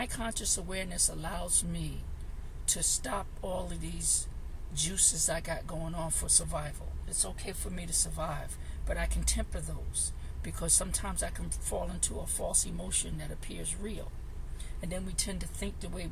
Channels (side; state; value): both; identical; correlation 1.00